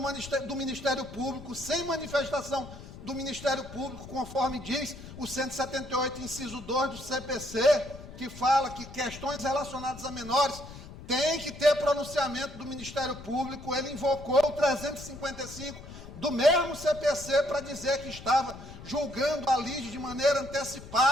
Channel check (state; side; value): noise; left; rumble, 14 dB below the sound